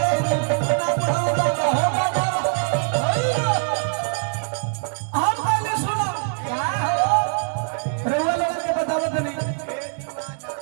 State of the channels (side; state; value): left; silent; digital silence